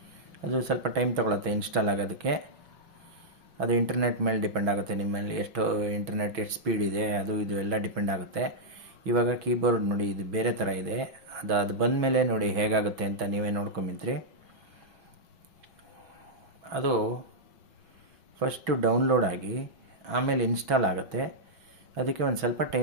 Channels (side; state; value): left; late; 6.2 ms